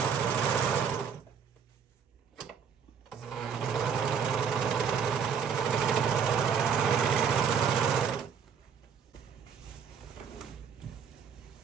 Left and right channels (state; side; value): quieter; left; 7.0 dB